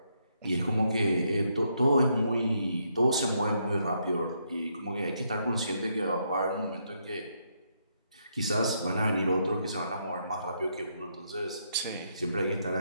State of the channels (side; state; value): both; inverted; correlation -0.76